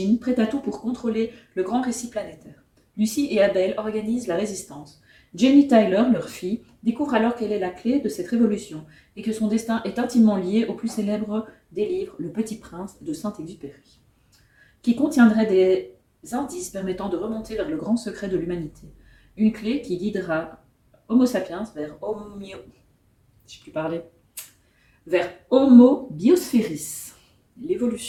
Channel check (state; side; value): identical; both; correlation 1.00